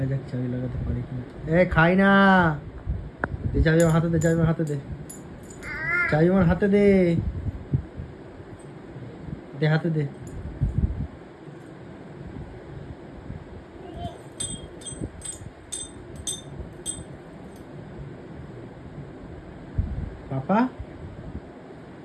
যাক চাবি লাগাতে পারি কিনা। খাই না, দে চাবি আমার হাতে দে, চাবি আমার হাতে দে, চাবি আমার হাতে দে, দে হাতে দে। পাপা,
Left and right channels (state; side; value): identical; both; correlation 1.00